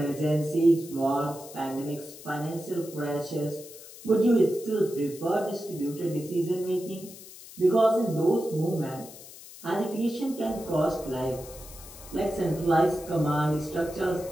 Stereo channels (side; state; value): left; noise; hiss, 17 dB below the sound